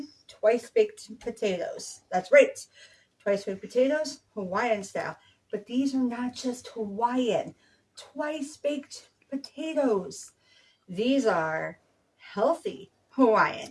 twice baked potatoes. That's right, twice baked potatoes, Hawaiian style. But these are not just Hawaiian twice baked potatoes, these are healthy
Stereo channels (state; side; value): identical; both; correlation 1.00